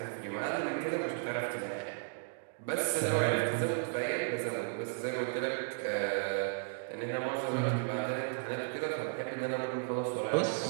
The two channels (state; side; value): silent; left; digital silence